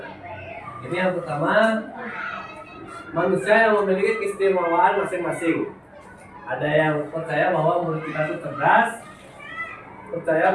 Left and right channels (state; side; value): identical; both; correlation 1.00